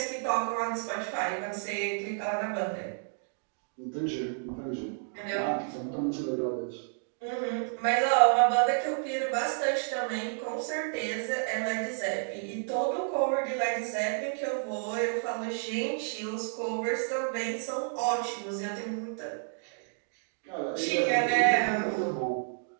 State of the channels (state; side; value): silent; left; digital silence